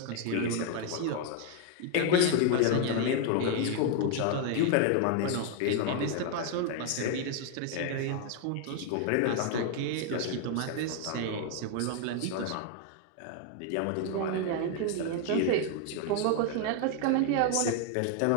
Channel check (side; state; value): both; different; correlation 0.01